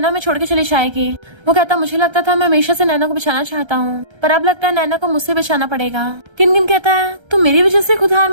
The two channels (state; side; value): late; left; 1.3 ms